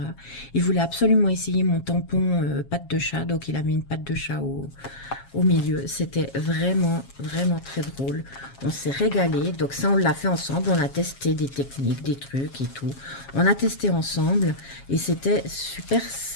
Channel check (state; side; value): late; right; 7.3 ms